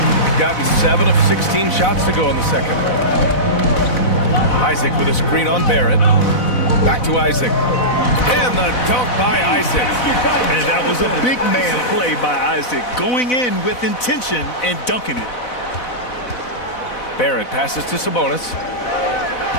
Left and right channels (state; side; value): late; right; 4.0 ms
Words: Gotten 7 of 16 shots to go in the second. Isaac with a screen on Barrett. Back to Isaac. And the dunk by Isaac. And that was a big man play by Isaac, going in with intention and dunking it. Barrett passes to Sabonis.